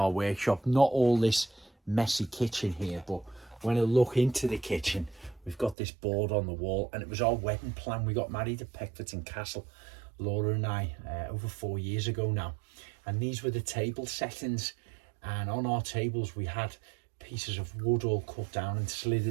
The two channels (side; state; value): left; drops out; at 5.8 s